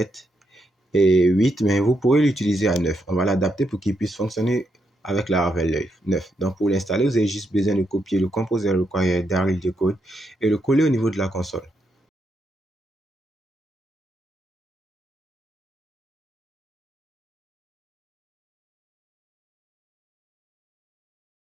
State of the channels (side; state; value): both; normal; correlation 0.80